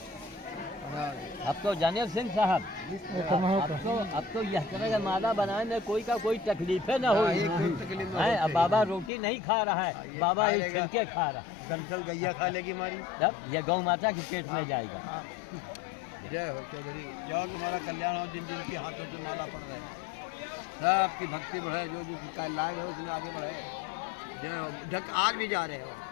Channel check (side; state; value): right; drops out; at 9.1 s